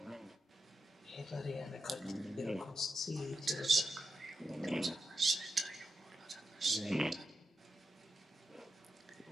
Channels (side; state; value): both; normal; correlation 0.88